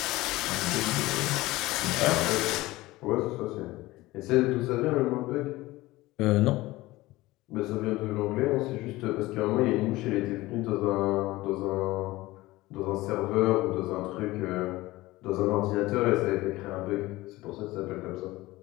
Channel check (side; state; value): right; quieter; 18.9 dB